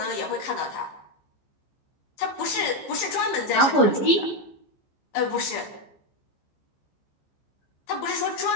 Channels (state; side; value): late; right; 15 ms